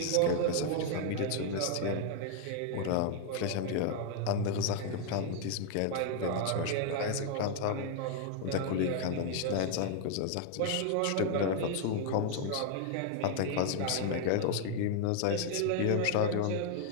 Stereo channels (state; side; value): different; both; correlation 0.00